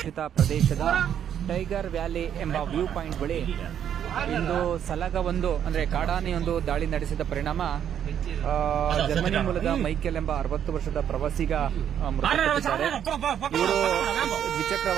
ಪ್ರದೇಶದ ಟೈಗರ್ ವ್ಯಾಲಿ ಎಂಬ ವ್ಯೂ ಪಾಯಿಂಟ್ ಬಳಿ ಇಂದು ಸಲಗವೊಂದು ಅಂದರೆ ಕಾಡಾನೆಯೊಂದು ದಾಳಿ ನಡೆಸಿದ ಪರಿಣಾಮ ಜರ್ಮನಿ ಮೂಲದ ಮೈಕೆಲ್ ಎಂಬ 60 ವರ್ಷದ ಪ್ರವಾಸಿಗ ಮೃತಪಟ್ಟಿದ್ದಾರೆ. ಇವರು ದ್ವಿಚಕ್ರ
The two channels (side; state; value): left; quieter; 9.3 dB